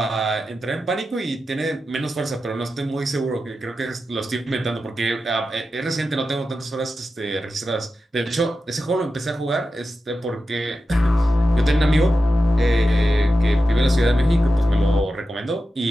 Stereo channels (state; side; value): normal; both; correlation 0.91